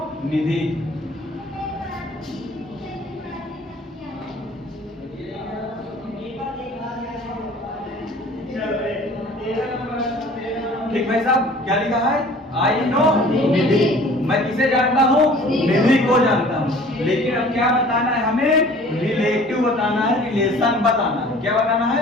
निधि। ठीक भाई साहब, क्या लिखा है, आई नो निधि, मैं किसे जानता हूँ, निधि को जानता हूँ। लेकिन अब क्या बताना है हमें, रिलेटिव बताना है, रिलेशन बताना है। क्या बताना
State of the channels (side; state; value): both; normal; correlation 0.48